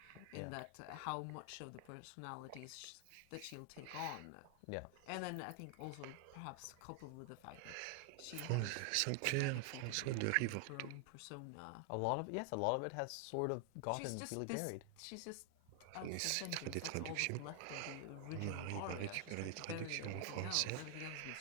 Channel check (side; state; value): both; different; correlation 0.00